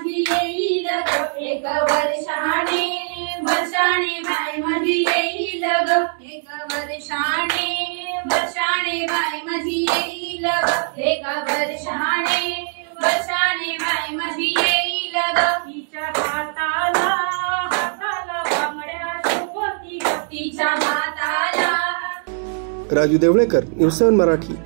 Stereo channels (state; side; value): silent; left; digital silence